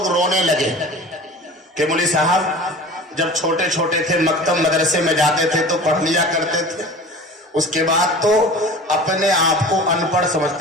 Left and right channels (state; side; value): normal; both; correlation 0.38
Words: रोने लगे कि मौलवी साहब जब छोटे छोटे थे मकतब मदरसे में जाते थे तो पढ़ लिया करते थे, उसके बाद तो अपने आप को अनपढ़